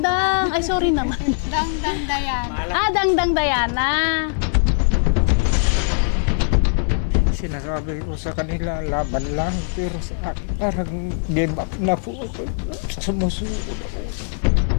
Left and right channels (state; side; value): silent; right; digital silence